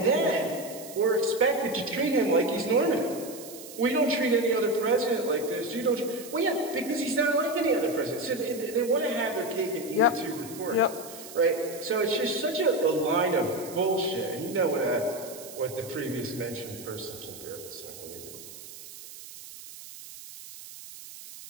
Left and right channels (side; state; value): right; noise; hiss, 15 dB below the sound